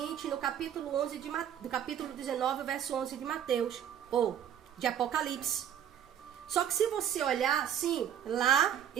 no capítulo 11 do capítulo 19, verso 11 de Mateus, ou de Apocalipse. Só que se você olhar assim, lá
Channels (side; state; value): left; quieter; 9.6 dB